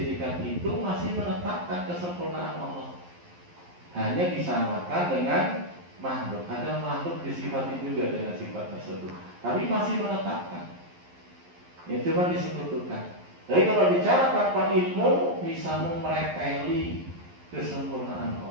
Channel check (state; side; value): late; left; 11 ms